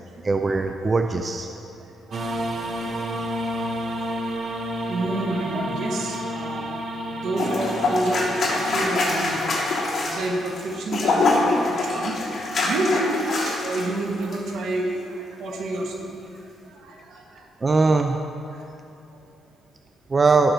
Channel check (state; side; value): normal; both; correlation 0.79